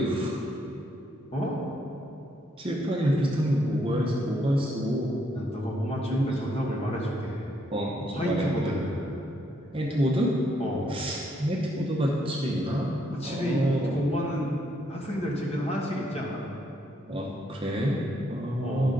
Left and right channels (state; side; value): normal; both; correlation 0.74